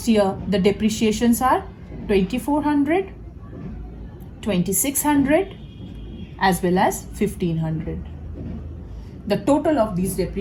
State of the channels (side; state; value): both; identical; correlation 1.00